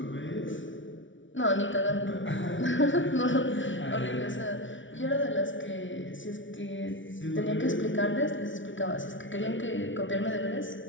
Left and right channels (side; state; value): right; late; 0.56 ms